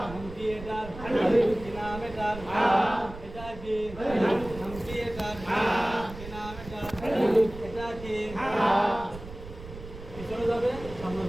নাম কি এটার? কি নাম এটার? এটা কি? নাম কি এটার? কি নাম এটার? এটা কি? পিছনে যাবে, সামনে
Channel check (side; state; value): right; noise; rumble, 13 dB below the sound